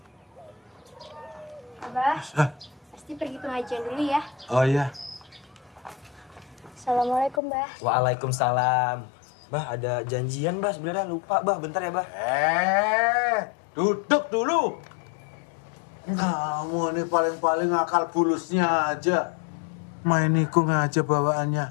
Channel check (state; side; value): drops out; right; at 7.4 s